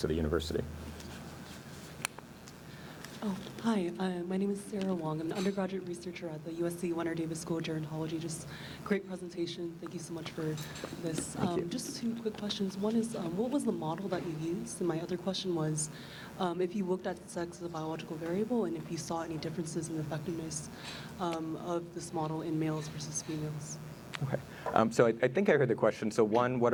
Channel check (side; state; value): both; identical; correlation 1.00